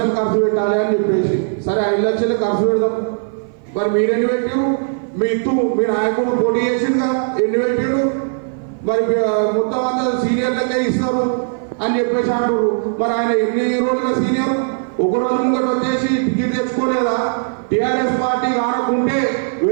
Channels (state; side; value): silent; left; 56 dB below the other